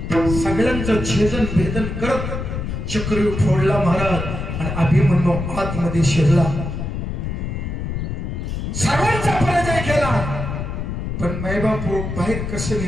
सगळ्यांचं छेदन भेदन करत चक्रव्यूह फोडला महाराज. आणि अभिमन्यू आतमध्ये शिरला, सर्वांचा पराजय केला. पण मायबापू बाहेर कसं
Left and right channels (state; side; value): noise; left; rumble, 4 dB below the sound